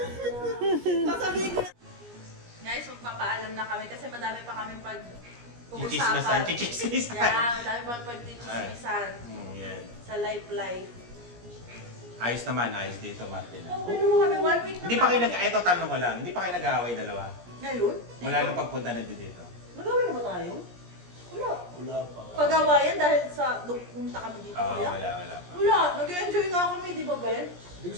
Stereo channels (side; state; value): left; late; 17 ms